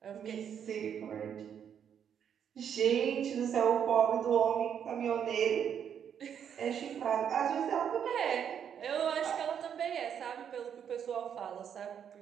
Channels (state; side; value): quieter; left; 8.4 dB